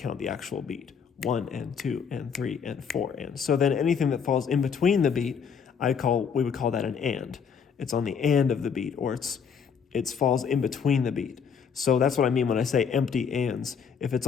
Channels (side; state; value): right; quieter; 6.7 dB